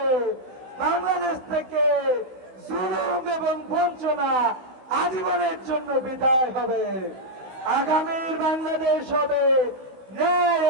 বাংলাদেশ থেকে জুলুম এবং বঞ্চনা আজীবনের জন্য বিদায় হবে। আগামীর বাংলাদেশ হবে ন্যায়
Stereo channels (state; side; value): late; left; 15 ms